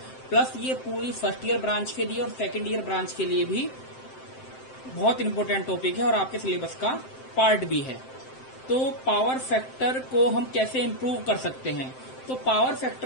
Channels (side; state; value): right; late; 7.7 ms